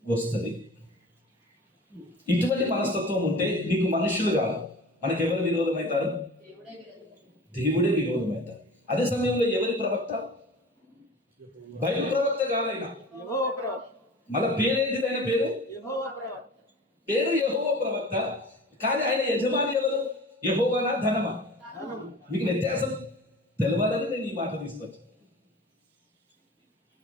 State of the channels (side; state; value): both; normal; correlation 0.40